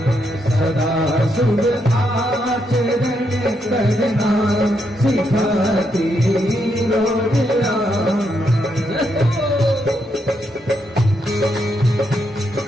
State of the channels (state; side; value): normal; both; correlation 0.79